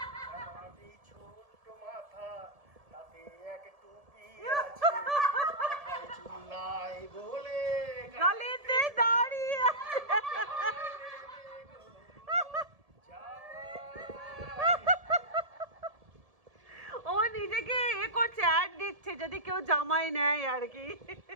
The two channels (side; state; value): left; late; 1.7 ms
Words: আমারই ছোট্ট মাথা, তাতে এক টুপি আছে, মাথায় চুল নাই বলে গালিতে দাঁড়িয়ে ও নিজেকে এ করছে, অ্যাড দিচ্ছে যদি কেউ জামাই নেয় আর কি,